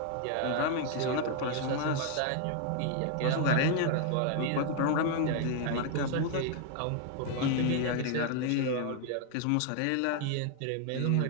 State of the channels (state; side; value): different; both; correlation 0.00